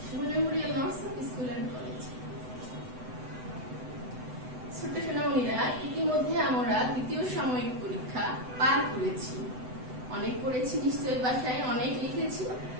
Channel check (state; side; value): late; left; 7.9 ms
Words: Shimul memorial nursery school and college. ছোট্ট সোনামণিরা, ইতিমধ্যে আমরা দ্বিতীয় সাময়িক পরীক্ষা পার করেছি। অনেক পড়েছি নিশ্চয়ই, বাসায় অনেক লিখেছি।